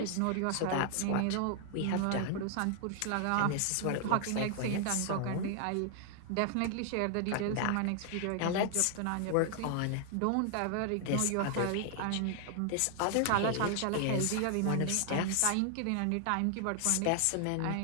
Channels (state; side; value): different; both; correlation 0.00